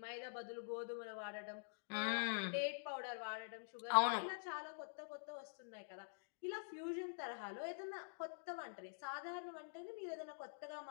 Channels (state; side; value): silent; right; digital silence